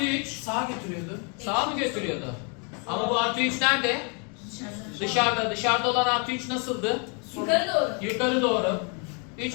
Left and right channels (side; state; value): right; quieter; 35.8 dB